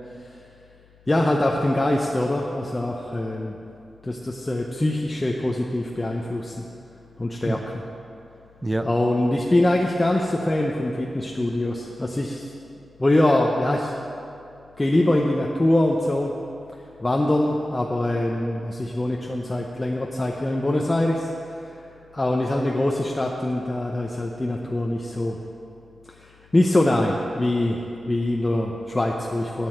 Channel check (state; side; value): noise; left; hum, 29 dB below the sound